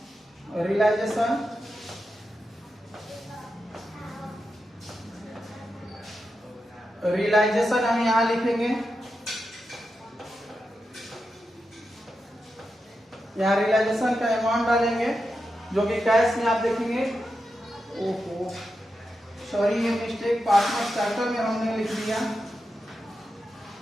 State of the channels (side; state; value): both; normal; correlation 0.88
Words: रियलाइजेशन। रियलाइजेशन हम यहाँ लिखेंगे, यहाँ रियलाइजेशन का अमाउंट डालेंगे जो कि कैश में आप देखेंगे। ओहो सॉरी, ये मिस्टेक पार्टनर स्टार्टर में हमने लिख दिया।